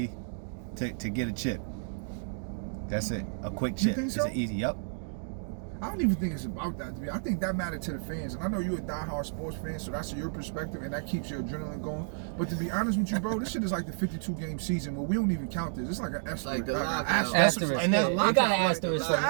to get a chip. That's it. A quick You chip. think It's so? an easy. Yup. I don't even think it's about that to me. I think that mattered to the fans. And I know you're a diehard sports fan, so that's your perspective and that keeps your adrenaline going. But to be honest with you, bro, this shit is like the 52-game season where we don't even count this. It's like an asterisk. Like the lockout. Asterisk. And that's- You got an asterisk.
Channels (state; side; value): silent; left; digital silence